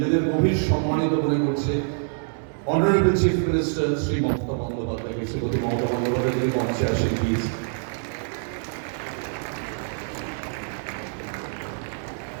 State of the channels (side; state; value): left; silent; 62 dB below the other